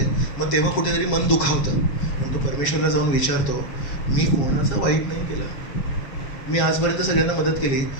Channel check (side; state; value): right; late; 7.3 ms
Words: मग तेव्हा कुठेतरी मन दुखावतं. मग तो परमेश्वरला जाऊन विचारतो, मी कोणाचं वाईट नाही केलं, मी आजपर्यंत सगळ्यांना मदत केली,